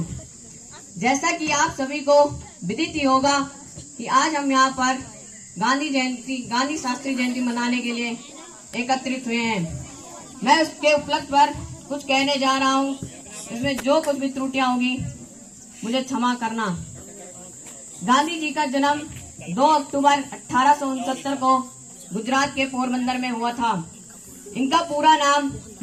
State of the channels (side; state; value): both; identical; correlation 1.00